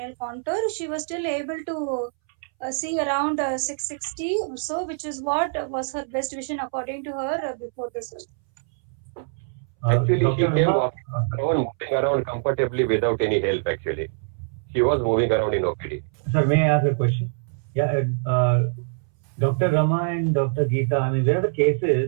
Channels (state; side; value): silent; left; 62 dB below the other